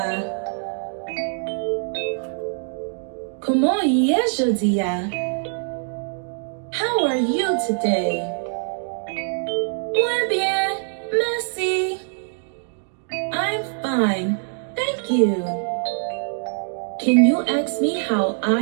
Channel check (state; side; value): silent; left; digital silence